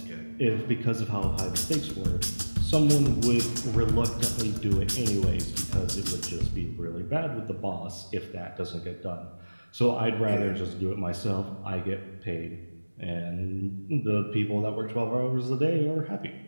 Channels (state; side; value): inverted; both; correlation -1.00